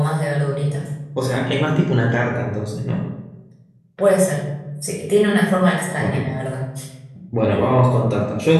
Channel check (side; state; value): both; identical; correlation 1.00